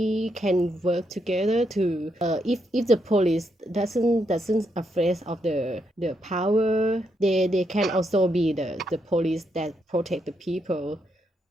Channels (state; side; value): normal; both; correlation 0.79